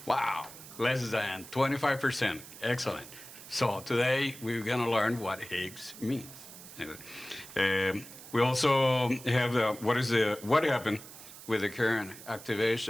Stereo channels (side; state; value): right; noise; hiss, 16 dB below the sound